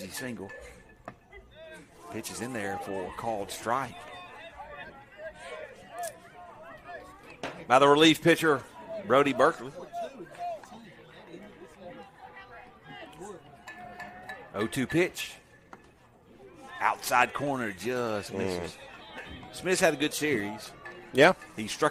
single. Pitch is in there for a called strike. By the relief pitcher, Brody Berkeley. 0-2 pitch. Outside corner just misses. Smith's had a good series. Yeah. He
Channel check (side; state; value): both; identical; correlation 1.00